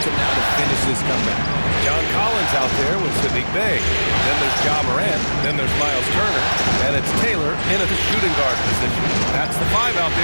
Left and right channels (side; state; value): both; inverted; correlation -1.00